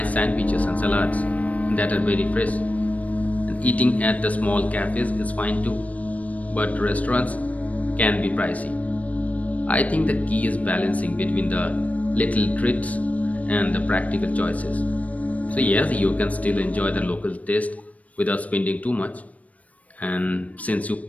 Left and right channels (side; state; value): right; late; 0.069 ms